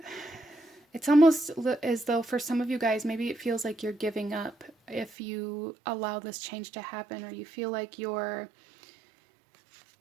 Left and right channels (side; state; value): left; drops out; at 5.2 s